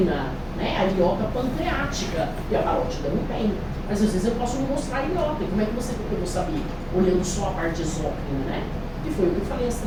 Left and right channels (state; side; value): identical; both; correlation 1.00